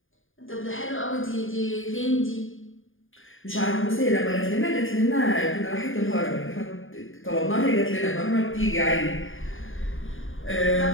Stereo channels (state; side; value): late; right; 0.58 ms